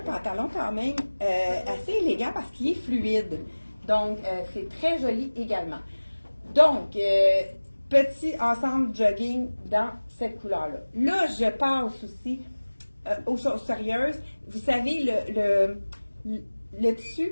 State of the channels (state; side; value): inverted; both; correlation -1.00